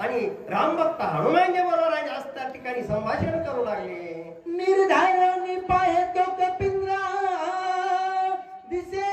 आणि रामभक्त हनुमानजी बरोबर त्या ठिकाणी संभाषण करू लागले। निर्धाराने पाय तो कपिंद्रा दिसे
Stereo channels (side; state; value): both; identical; correlation 1.00